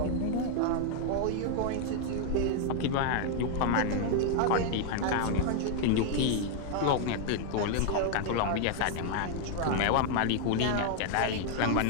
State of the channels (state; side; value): different; both; correlation 0.00